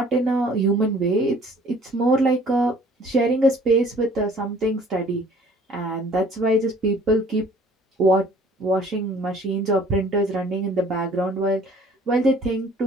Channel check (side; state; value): both; normal; correlation 0.54